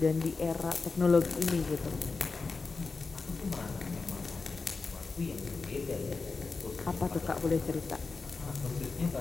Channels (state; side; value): quieter; right; 4.3 dB